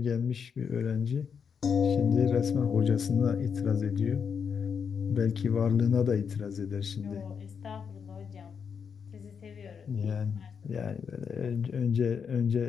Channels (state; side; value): quieter; right; 6.6 dB